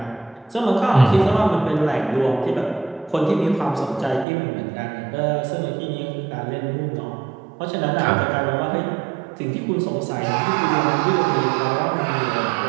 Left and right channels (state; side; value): drops out; left; at 4.2 s